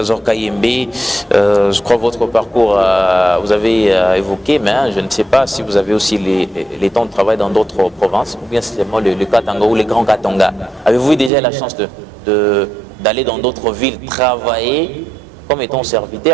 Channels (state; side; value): drops out; left; at 11.3 s